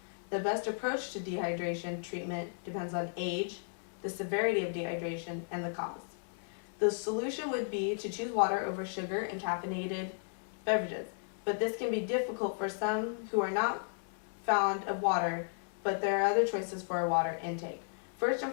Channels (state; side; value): silent; right; digital silence